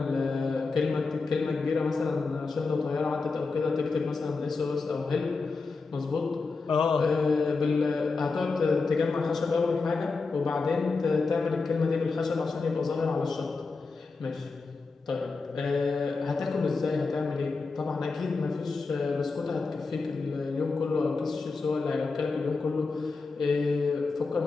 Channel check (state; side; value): quieter; right; 4.2 dB